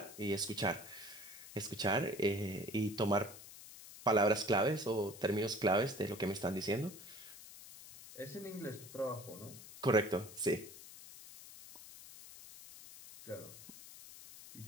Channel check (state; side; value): noise; left; hiss, 16 dB below the sound